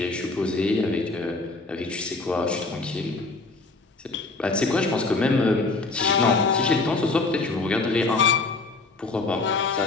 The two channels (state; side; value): quieter; right; 3.6 dB